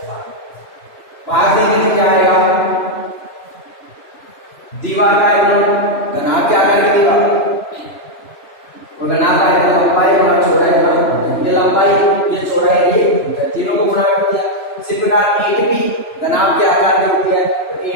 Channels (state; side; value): late; right; 3.0 ms